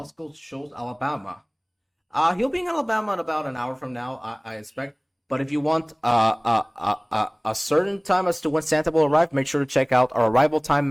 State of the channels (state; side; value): identical; both; correlation 1.00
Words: Shoals, Alabama? He'll be in Alabama in about an hour from now, I expect. But if you want a certain time as to when Santa will arrive, make sure to check out our arrival time